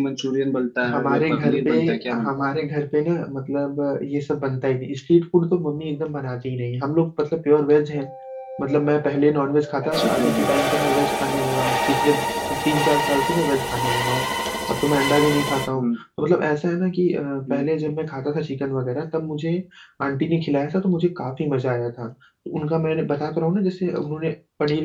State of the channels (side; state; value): both; identical; correlation 1.00